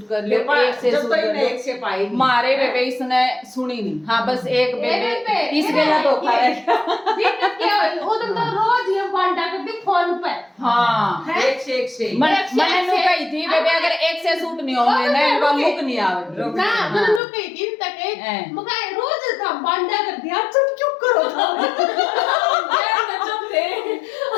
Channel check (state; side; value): drops out; right; at 17.2 s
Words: कर लो एक से सूट कर लो एक से पाई मारे बेबे इसने सुनी नहीं हाँ बस एक बेबे इसके ना धोखा है दिक्कत क्या हुई वो तो रोज ये बांटा करती फोन पे हाँ एक से मैंने नु कही थी बेबे अगर एक से सूट नहीं होंगे ना इनका लुक नहीं आवे ना मैंने लोग कई दिन तक हैं। मगर रोज था बांटा कर दिया तुम क्यों करो था